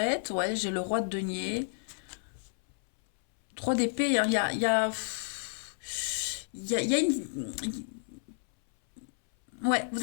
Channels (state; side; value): silent; right; 57 dB below the other